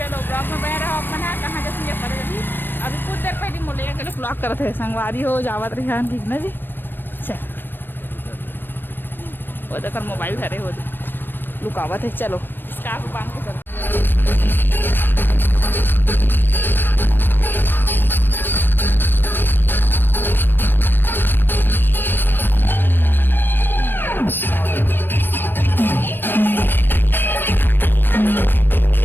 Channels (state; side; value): late; right; 0.095 ms